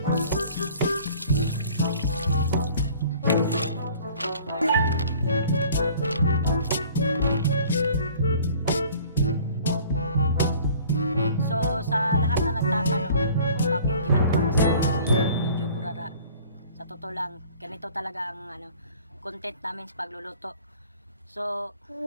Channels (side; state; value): both; inverted; correlation -0.51